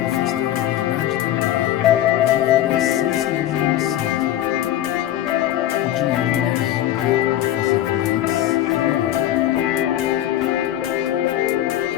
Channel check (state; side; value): quieter; right; 12.7 dB